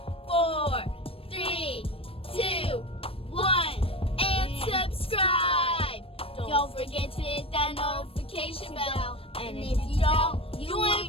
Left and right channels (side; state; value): right; late; 0.27 ms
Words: 4, 3, 2, 1, and subscribe. Don't forget to hit that notification bell. And if you don't, you